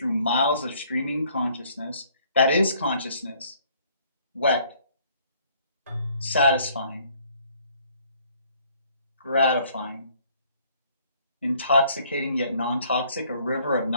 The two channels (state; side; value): inverted; both; correlation -0.61